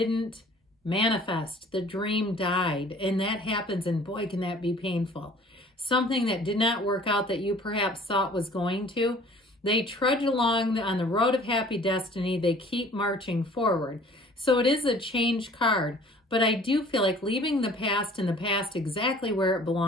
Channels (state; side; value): normal; both; correlation 0.51